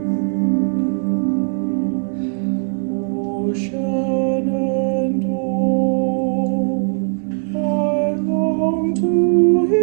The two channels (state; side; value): silent; left; 58 dB below the other